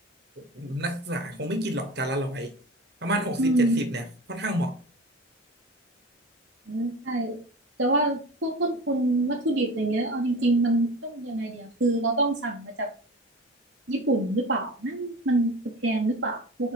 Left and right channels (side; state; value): both; normal; correlation 0.34